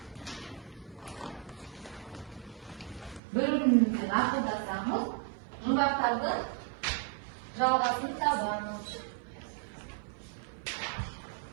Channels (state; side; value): drops out; left; at 3.2 s